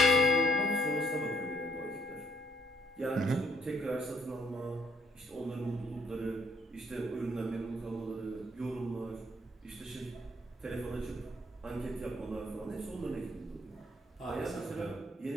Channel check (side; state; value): both; normal; correlation 0.65